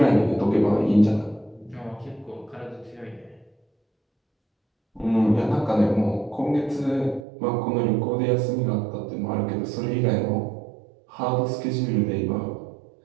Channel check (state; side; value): drops out; left; at 7.2 s